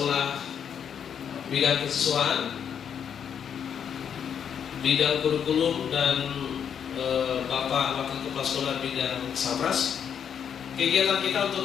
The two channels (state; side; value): quieter; right; 8.0 dB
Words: bidang kesiswaan, bidang kurikulum, dan Bapak Wakil Kepala Sekolah bidang Sabras. Kegiatan kita untuk